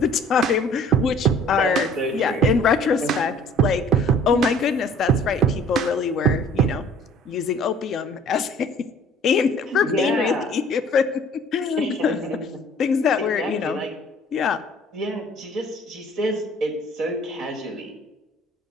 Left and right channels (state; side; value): normal; both; correlation 0.53